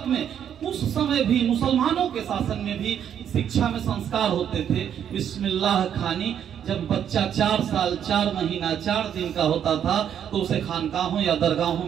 में, उस समय भी मुसलमानों के शासन में भी शिक्षा में संस्कार होते थे। बिस्मिल्लाह खानी, जब बच्चा 4 साल 4 महीना 4 दिन का होता था तो उसे खानकाहों या दरगाहों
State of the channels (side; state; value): left; quieter; 9.1 dB